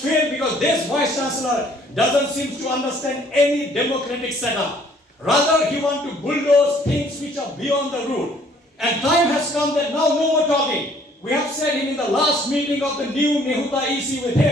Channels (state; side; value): normal; both; correlation 0.60